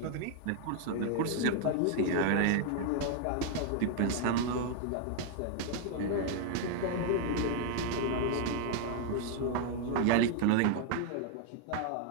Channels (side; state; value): both; different; correlation 0.00